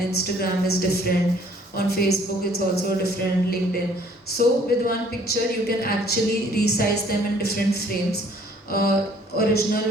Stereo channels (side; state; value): both; normal; correlation 0.59